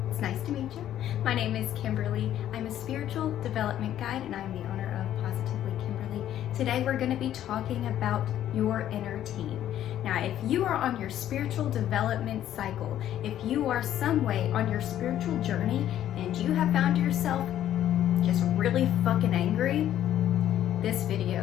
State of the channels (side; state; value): right; quieter; 11.6 dB